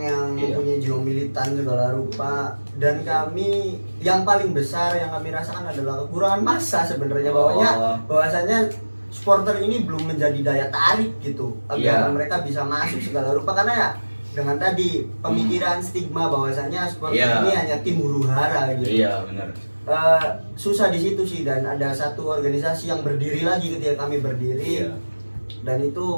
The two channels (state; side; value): inverted; both; correlation -1.00